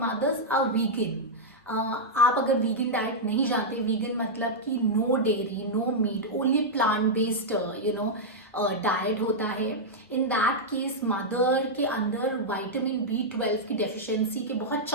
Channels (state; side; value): normal; both; correlation -0.06